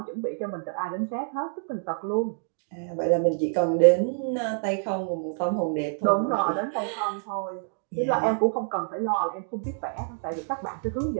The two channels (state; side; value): silent; left; digital silence